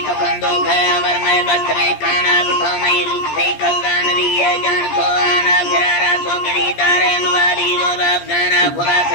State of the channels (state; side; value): late; right; 14 ms